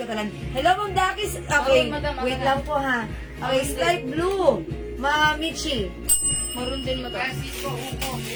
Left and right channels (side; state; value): both; identical; correlation 1.00